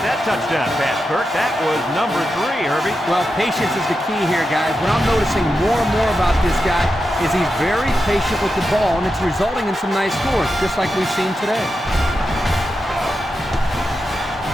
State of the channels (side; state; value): both; normal; correlation 0.89